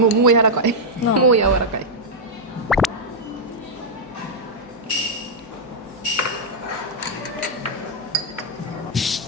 う柔らかい。なあもう柔らかい。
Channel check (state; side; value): normal; both; correlation -0.04